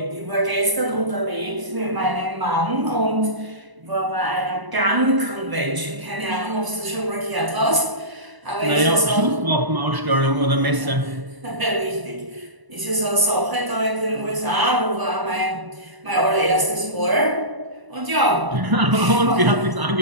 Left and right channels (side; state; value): left; late; 1.0 ms